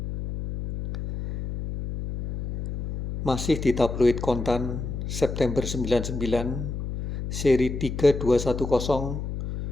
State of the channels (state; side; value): noise; left; hum, 5 dB below the sound